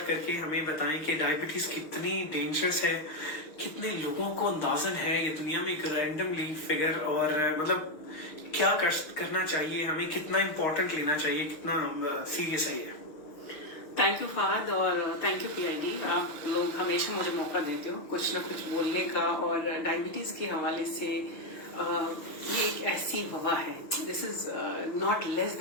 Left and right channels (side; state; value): right; late; 6.5 ms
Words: करके हमें बताएं कि डायबिटीज कितनी डेंजरस है, कितने लोगों को अंदाजन है ये दुनिया में एक रैंडमली फिगर, और मतलब क्या करना चाहिए हमें, कितना इम्पोर्टेंट लेना चाहिए, कितना सीरियस है ये। थैंक यू फहद और थैंक यू पीआईडी। आप लोग हमेशा मुझे मौका देते हो कुछ ना कुछ बोलने का, और डायबिटीज के हवाले से ये एक ऐसी वबा है, this is not less